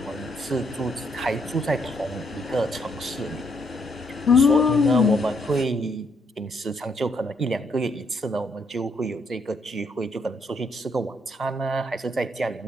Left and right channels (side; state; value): both; normal; correlation 0.73